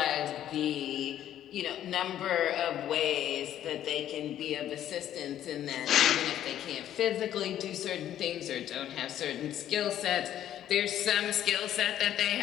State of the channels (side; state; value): right; quieter; 11.4 dB